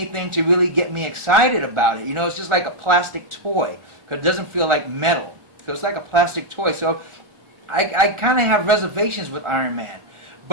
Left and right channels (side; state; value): left; late; 1.4 ms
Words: to really get me excited about it. You know, it's just like a plastic toy, because it doesn't feel like metal. So it's like a plastic toy. So I kind of have reservations with Iron Man.